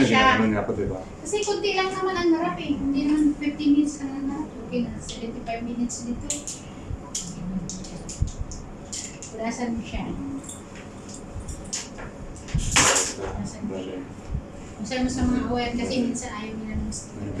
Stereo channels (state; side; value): identical; both; correlation 1.00